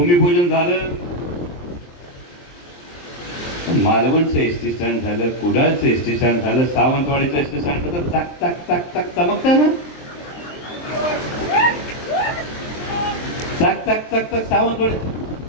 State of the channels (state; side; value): late; right; 23 ms